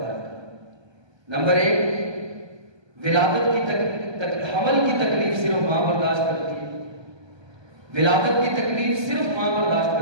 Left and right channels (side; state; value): left; late; 1.2 ms